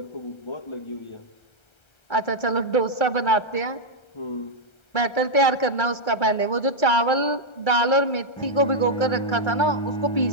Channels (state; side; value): late; right; 1.3 ms